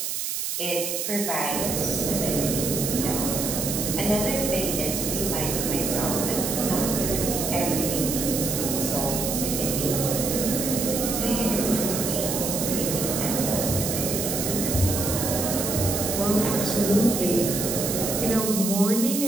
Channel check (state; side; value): noise; right; hiss, 2 dB below the sound